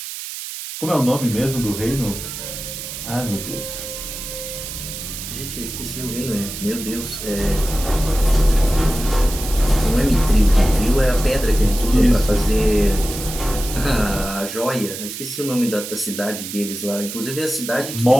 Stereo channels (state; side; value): noise; right; hiss, 8 dB below the sound